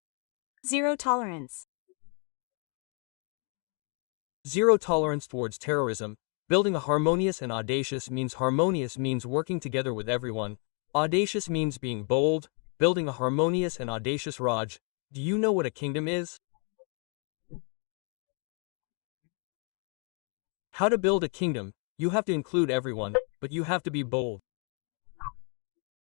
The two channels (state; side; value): quieter; right; 39.8 dB